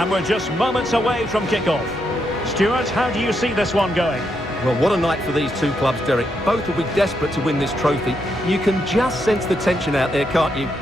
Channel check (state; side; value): normal; both; correlation 0.80